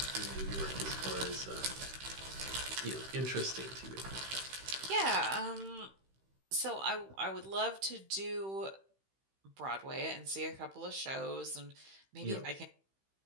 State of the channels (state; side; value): late; left; 15 ms